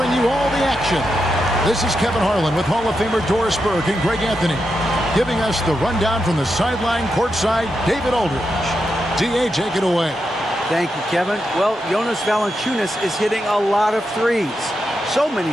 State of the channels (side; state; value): both; normal; correlation 0.86